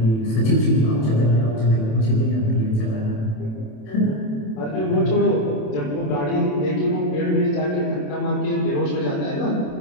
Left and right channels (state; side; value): late; right; 27 ms